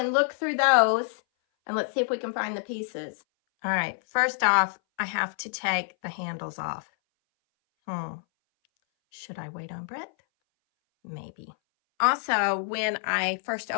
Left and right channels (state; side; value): silent; right; 58 dB below the other